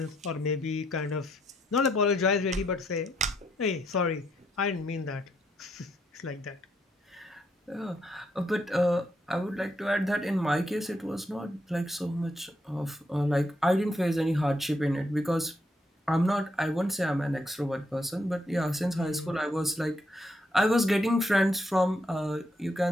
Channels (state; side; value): normal; both; correlation 0.76